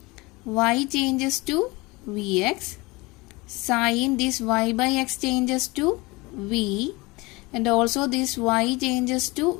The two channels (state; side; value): quieter; right; 23.8 dB